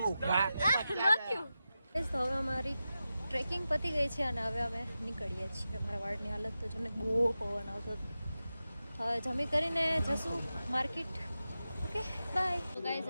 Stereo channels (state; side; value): inverted; both; correlation -0.92